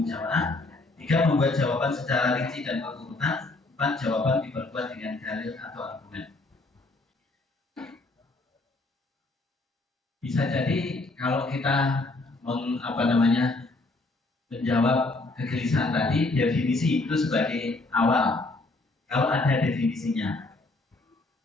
jamaah. 3. Membuat jawaban secara rinci dan berurutan. 4. Jawaban diperkuat dengan dalil atau argumen. Bisa jadi kalau kita menjawab kegelisahan tadi, definisi itu sebagai awal. Kalau ada definisinya.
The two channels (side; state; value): right; quieter; 3.1 dB